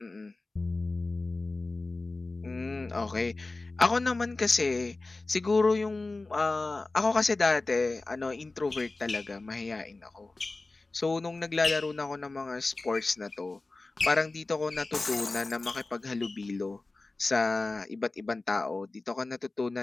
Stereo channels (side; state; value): right; quieter; 3.3 dB